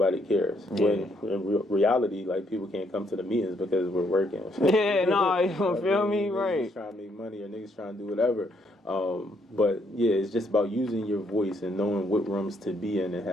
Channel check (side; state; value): both; normal; correlation 0.72